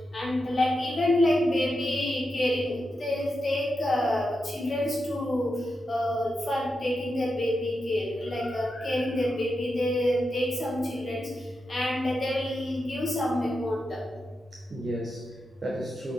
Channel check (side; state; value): both; normal; correlation 0.88